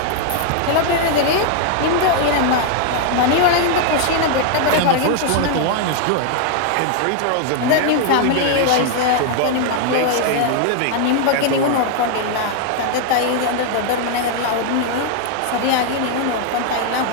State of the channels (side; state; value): both; different; correlation 0.00